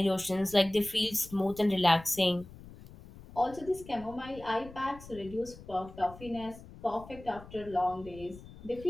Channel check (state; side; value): noise; left; rumble, 17 dB below the sound